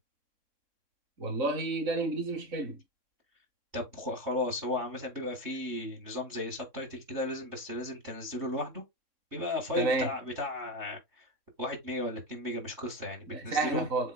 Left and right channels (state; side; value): late; left; 3.6 ms